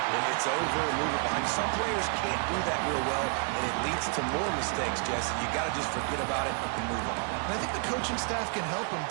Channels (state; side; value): quieter; left; 39.9 dB